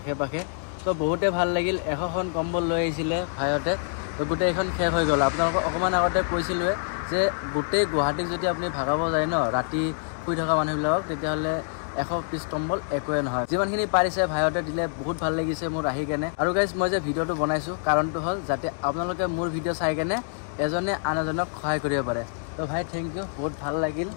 পাশে। ত' বহুতে ভাল লাগিল। 100খন কম্বল লৈ আহিছিলে ভাইহঁতে, তো গোটেইখন শেষ হৈ গ'ল। আপোনালোকক অকণমান আগতে কৈছিলোঁৱে যে গোটেই গুৱাহাটীক যদি আপুনি ভাগাব যায় ন, ৰাতি শুই থকা মানুহবিলাকক, তেতিয়াহ'লে 100 পিচ কম্বল একোৱে নহয়। যিমানখিনি পাৰিছে ভাইহঁতে দিলে, বহুত ভাল লাগিছে মোৰ আহি কেনে। আৰু গাইজ, মই যে ভিডিঅ'টো বনাইছোঁ কাৰণটো হ'ল যাতে আপোনালোকে মোৰ ভিডিঅ' চাই কেনে এজনে আন এজনক সহায় কৰিব পাৰে। তো ভাই থেংক ইউ, বহুত ভাল লাগিল।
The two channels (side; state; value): right; silent; digital silence